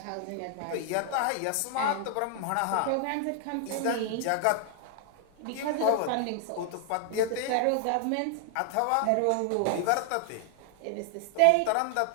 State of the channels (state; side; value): different; both; correlation 0.00